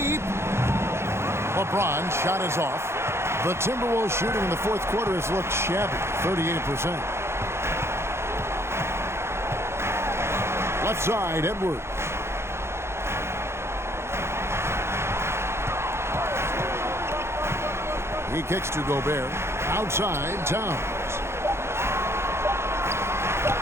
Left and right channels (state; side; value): late; left; 0.12 ms